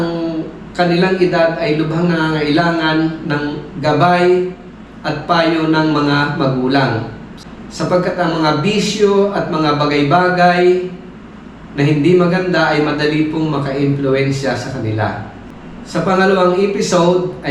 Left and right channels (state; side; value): identical; both; correlation 1.00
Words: kanilang edad ay lubhang nangangailangan ng gabay at payo ng mga magulang. Sapagkat ang mga bisyo at mga bagay-bagay na hindi maganda ay madali pong maka-impluensya sa kanila. Sa pangalawang episode